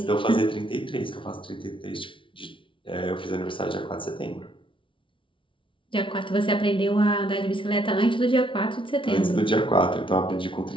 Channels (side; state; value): right; late; 0.25 ms